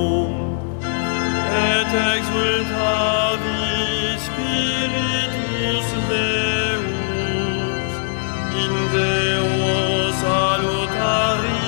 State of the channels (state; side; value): silent; right; digital silence